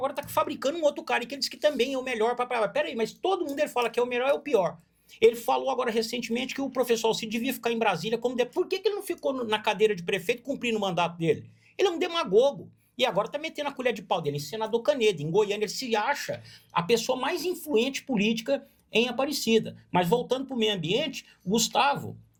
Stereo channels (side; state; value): both; identical; correlation 1.00